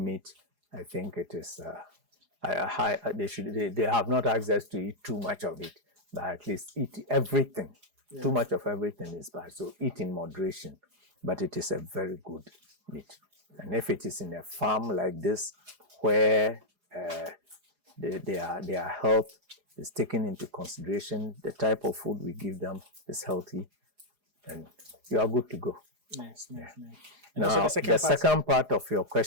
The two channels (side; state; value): left; late; 4.9 ms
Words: meat, I think it is. They have not access to eat too much of it, but at least eat everything. Yeah. Too much of everything is bad, so eat in moderation. But it is a very good meat. And if it is in a farm like this, where their health is taken into consideration, the type of food we give them is healthy, and you are good to go. Nice. And Now, also the second part of your